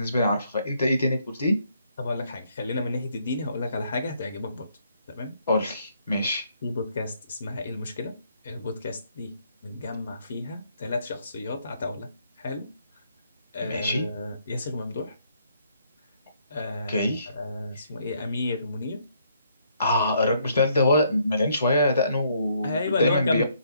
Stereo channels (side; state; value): both; inverted; correlation -0.70